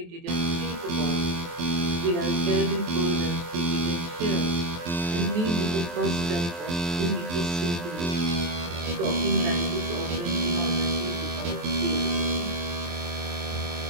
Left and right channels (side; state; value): left; late; 23 ms